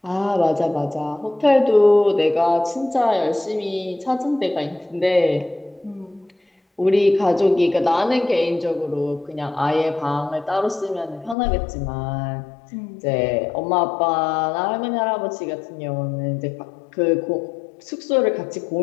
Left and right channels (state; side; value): drops out; right; at 11.4 s